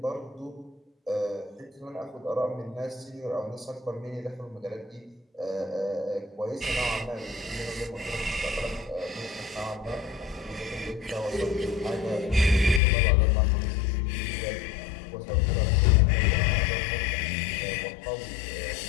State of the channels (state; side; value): drops out; right; at 12.8 s